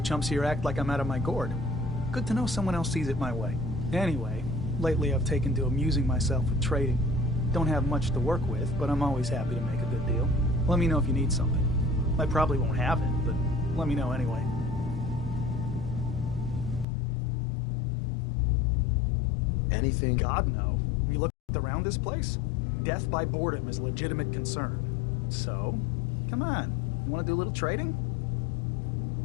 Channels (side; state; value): right; drops out; at 16.9 s